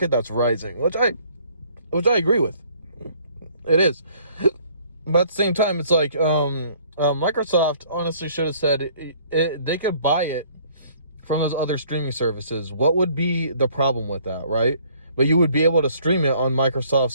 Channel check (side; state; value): both; inverted; correlation -0.58